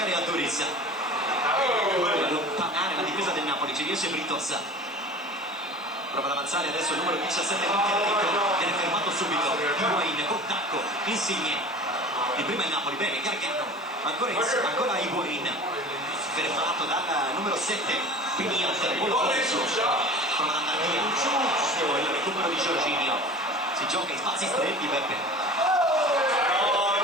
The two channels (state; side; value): noise; right; hiss, 29 dB below the sound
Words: Aduriz. Allontanare la difesa del Napoli, ci riesce Britos, prova ad avanzare adesso il numero 17 Enrico, viene fermato subito Higuain con tacco, Insigne di prima il Napoli, bene Gargano, ancora Higuain fermato dal numero 7 Piniot, prova ad andare via il recupero di Jorginho, si gioca in spazi stretti Beppe,